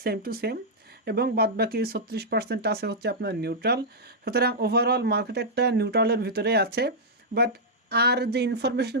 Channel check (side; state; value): both; normal; correlation -0.07